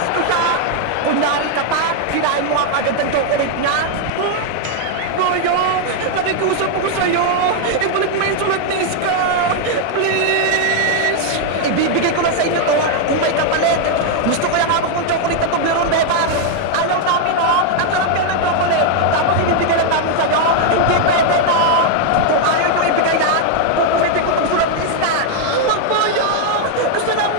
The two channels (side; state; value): both; different; correlation 0.00